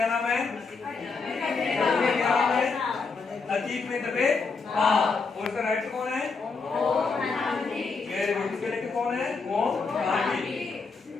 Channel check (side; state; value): right; quieter; 4.6 dB